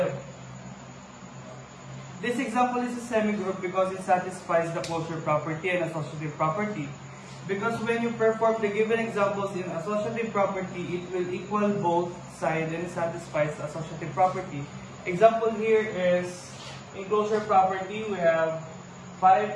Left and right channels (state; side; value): identical; both; correlation 1.00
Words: This example is a semigroup because it satisfies the closure property and associative property. Because when you perform the given examples in associative property, it will equal both sides and it satisfies the associative property. Example here is, in closure property, we have